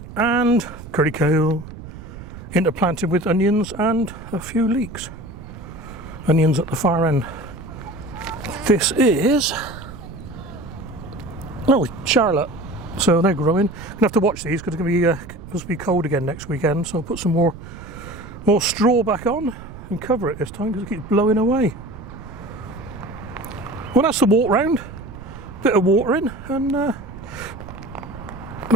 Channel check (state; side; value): noise; right; rumble, 13 dB below the sound